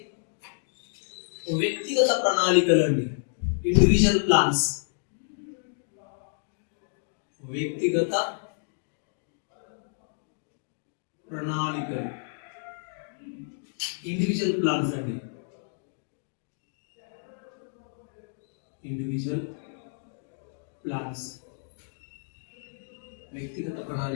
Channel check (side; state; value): right; silent; digital silence